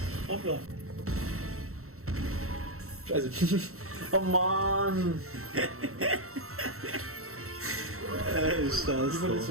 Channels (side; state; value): left; late; 0.63 ms